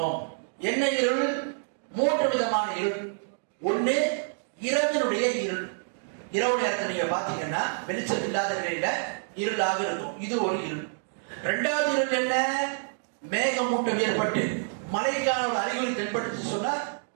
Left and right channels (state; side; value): silent; left; digital silence